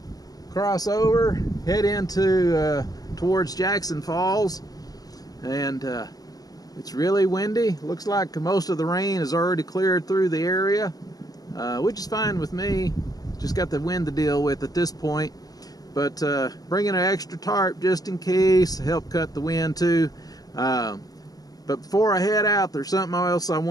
cross over, head into towards Jackson Falls, and it's really windy. Looks like most of the rain has already cleared through the area, which is fine with me. Just got the wind to deal with at this point, but bringing an extra tarp just in case to help cut the wind too. But before I head out, there's something else I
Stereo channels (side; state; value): right; late; 0.18 ms